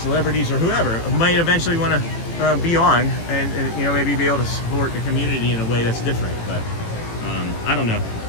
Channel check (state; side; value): late; right; 18 ms